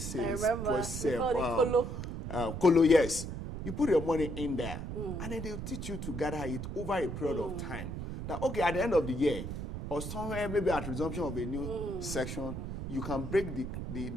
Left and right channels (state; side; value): noise; right; rumble, 6 dB below the sound